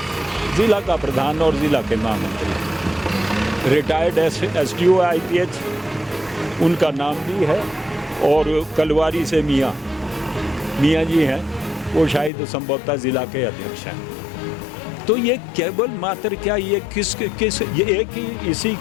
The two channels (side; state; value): right; drops out; at 12.3 s